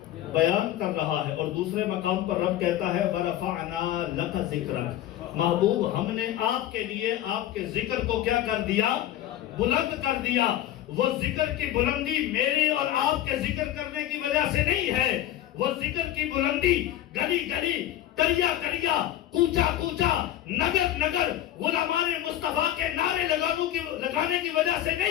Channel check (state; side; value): quieter; right; 12.7 dB